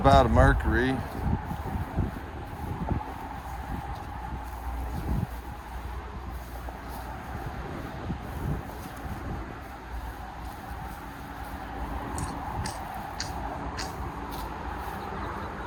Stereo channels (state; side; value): identical; both; correlation 1.00